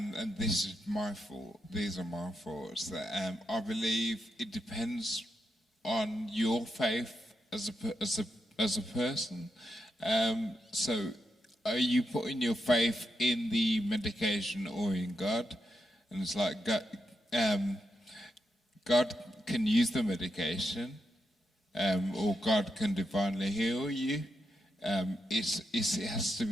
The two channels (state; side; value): normal; both; correlation 0.84